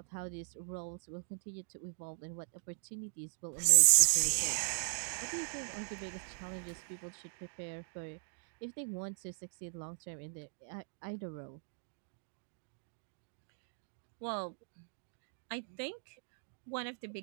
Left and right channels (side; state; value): left; silent; digital silence